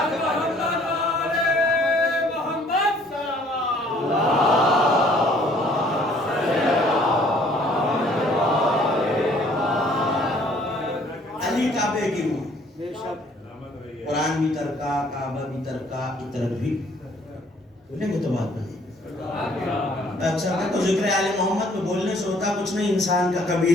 قرآن بھی ترکا، کعبہ بھی ترکا، عطرت بھی. بولیں گے تو بات بنے. اکثر کہ تو ذکر آل محمد میں بولنے سے ہوتا کچھ نہیں، انسان کا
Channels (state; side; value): normal; both; correlation 0.59